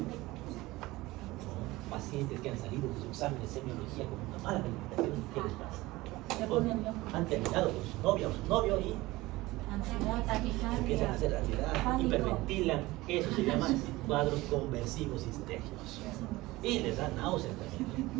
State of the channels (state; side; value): quieter; left; 19.6 dB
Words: pacientes que han salido de su examen de semiología con una mala calificación, ¿qué les pasa? Han terminado con su novia o su novio y empiezan a hacer ansiedad, hiperventilan. Eso se llama cuadros conversivos histéricos. Y les da náuseas también.